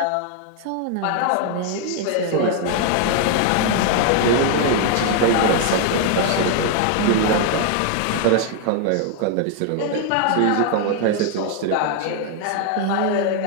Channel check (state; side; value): different; both; correlation 0.00